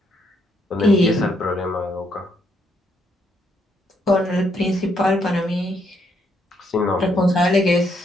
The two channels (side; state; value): both; normal; correlation 0.74